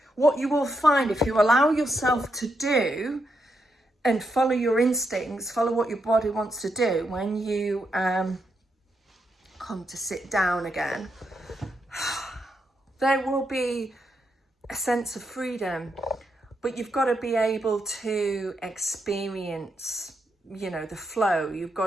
what you will find, if you allow yourself to do and follow your instincts, follow what your body wants to do, when you come to sit down again, there will be a sense of freedom, but you've got to be able to experience, the flow. You've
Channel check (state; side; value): normal; both; correlation 0.82